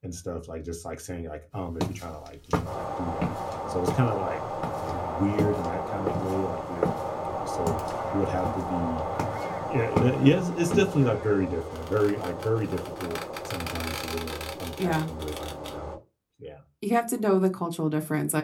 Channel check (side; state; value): both; identical; correlation 1.00